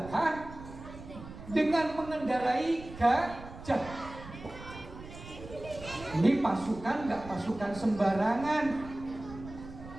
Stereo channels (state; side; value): noise; right; rumble, 14 dB below the sound